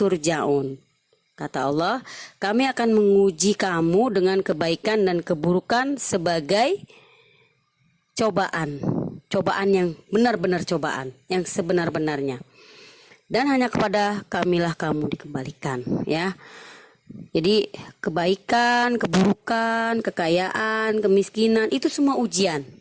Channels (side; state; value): both; identical; correlation 1.00